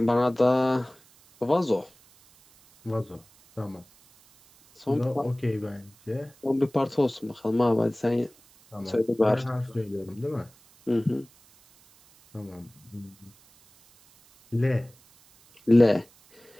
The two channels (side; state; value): right; noise; hiss, 28 dB below the sound